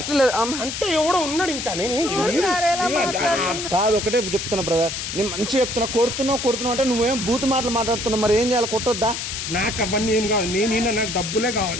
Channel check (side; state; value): left; noise; hiss, 5 dB below the sound